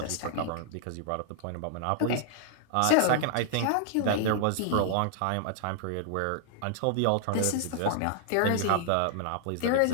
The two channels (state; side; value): different; both; correlation 0.00